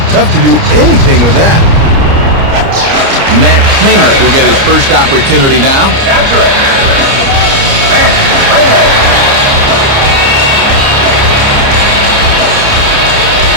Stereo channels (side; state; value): left; late; 30 ms